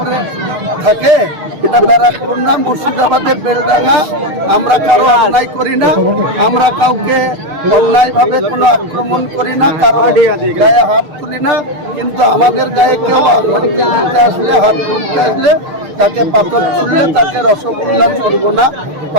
থাকে, এটা ব্যারাকপুর না, মুর্শিদাবাদের বেলডাঙ্গা। আমরা কারো অন্যায় করি না, আমরা কাউকে অন্যায়ভাবে কোনো আক্রমণ করি না, কারো গায়ে হাত তুলি না। কিন্তু আমাদের গায়ে কেউ আসলে, হাত তুলতে আসলে, তাকে পাথর ছুঁড়লে তাকে রসগোল্লা ছুড়বো না,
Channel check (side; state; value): left; late; 6.5 ms